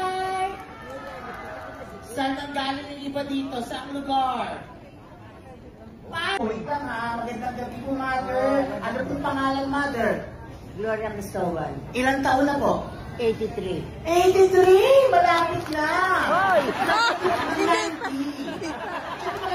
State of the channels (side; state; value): both; identical; correlation 1.00